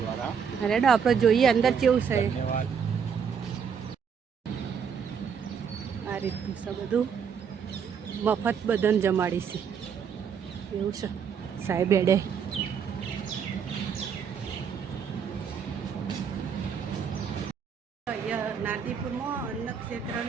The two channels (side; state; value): left; quieter; 6.9 dB